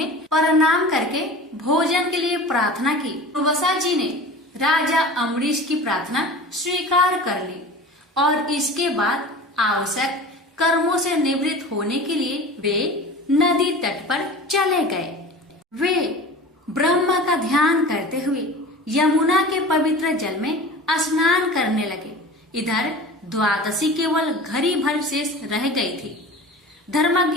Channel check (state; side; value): normal; both; correlation 0.37